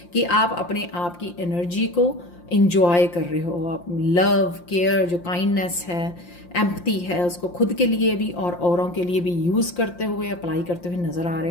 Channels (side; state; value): right; late; 5.7 ms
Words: कि आप अपने आप की एनर्जी को इंजॉय कर रहे हो। आप लव, केयर, जो काइंडनेस है, एम्पैथी है, उसको खुद के लिए भी और औरों के लिए भी यूज़ करते हुए, अप्लाई करते हुए नज़र आ रहे